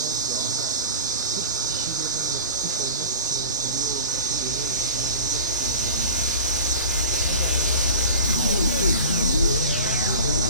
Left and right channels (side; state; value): both; inverted; correlation -0.36